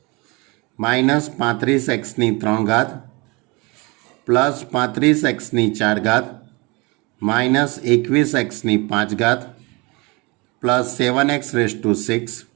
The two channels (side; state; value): left; quieter; 26.8 dB